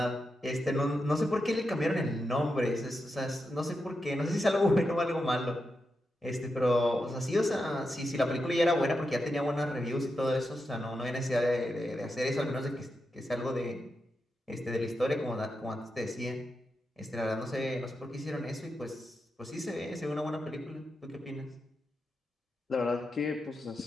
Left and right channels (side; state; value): both; normal; correlation 0.87